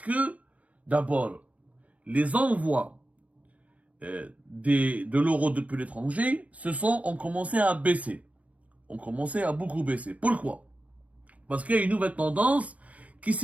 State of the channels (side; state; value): left; late; 0.068 ms